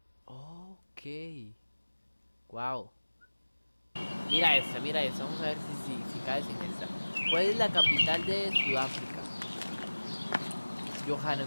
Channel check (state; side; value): inverted; both; correlation -1.00